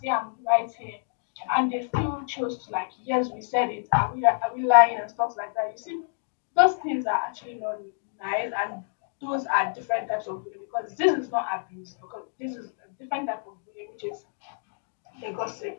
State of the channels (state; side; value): silent; right; digital silence